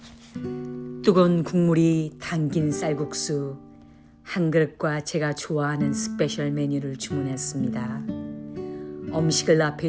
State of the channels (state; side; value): identical; both; correlation 1.00